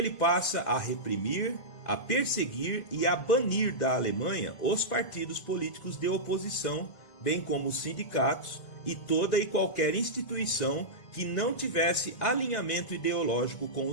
passa a reprimir, a perseguir e a banir da Alemanha os partidos políticos de oposição, bem como os sindicatos e toda e qualquer instituição que não tivesse alinhamento ideológico com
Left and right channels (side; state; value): right; late; 1.7 ms